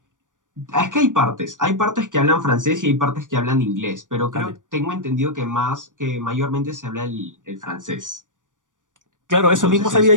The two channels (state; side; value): late; left; 0.87 ms